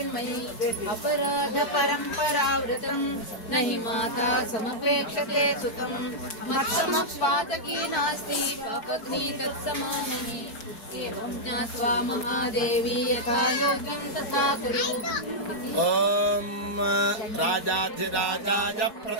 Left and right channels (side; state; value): right; late; 4.5 ms